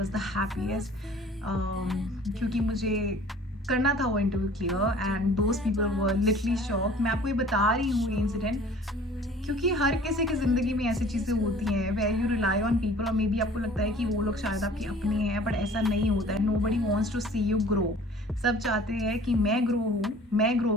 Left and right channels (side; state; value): both; normal; correlation 0.49